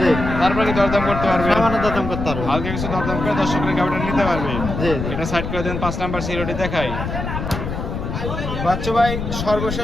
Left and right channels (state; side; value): noise; left; rumble, 5 dB below the sound